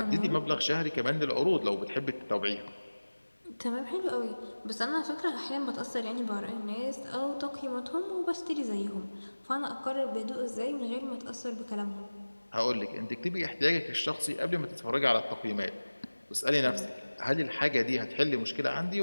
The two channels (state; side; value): inverted; both; correlation -1.00